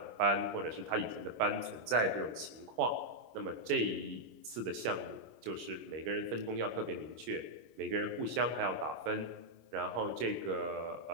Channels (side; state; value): left; late; 25 ms